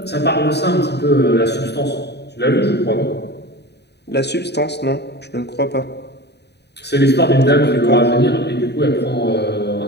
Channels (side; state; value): right; late; 0.49 ms